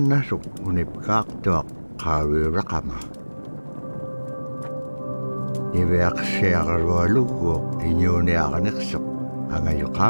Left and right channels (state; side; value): inverted; both; correlation -1.00